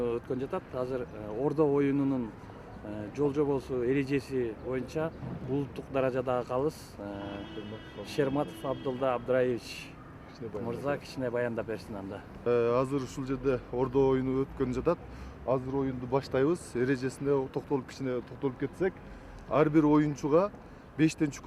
өткөн жатат. Азыр ордо оюнунун жол жобосу эрежеси боюнча улуттук даражадагы калыс Шерматов Абдулда Абдраевич мырза кичине баяндап берсин анда. Азыр ушул жерде ордо оюну өткөн жатат. Азыр оюнду баштайбыз. Эрежесине кичине токтолуп кетсек, ар бир оюнчуга 5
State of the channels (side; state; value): both; identical; correlation 1.00